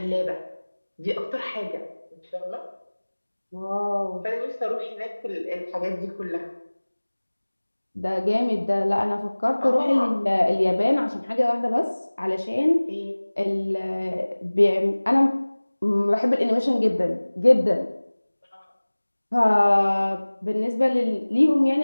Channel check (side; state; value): both; inverted; correlation -1.00